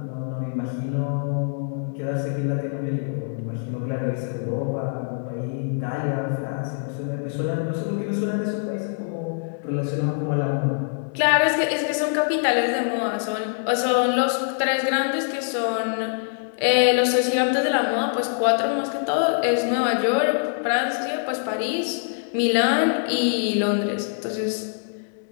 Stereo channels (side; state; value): right; silent; digital silence